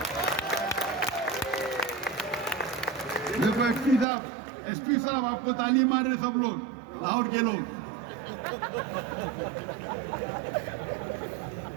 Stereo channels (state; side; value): drops out; left; at 4.0 s